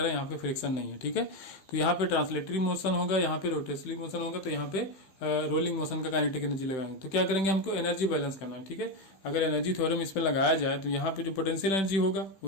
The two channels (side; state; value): right; late; 16 ms